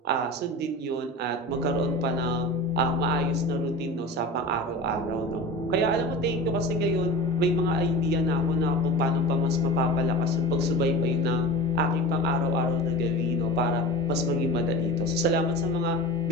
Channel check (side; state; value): both; normal; correlation 0.33